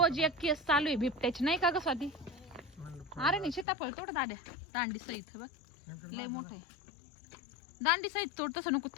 एक केस चालू आहे बिबट्याची नाही का ग स्वाती अरे नाही सीताफळ तोड दाद्या दांडी सहित बघ लय मोठं आहे दांडी सहित तोड तसं नको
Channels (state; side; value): drops out; right; at 3.7 s